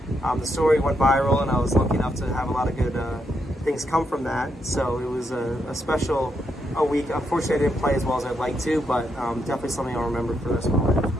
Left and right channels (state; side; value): normal; both; correlation 0.80